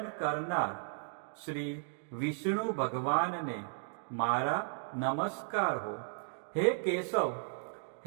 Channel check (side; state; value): left; silent; digital silence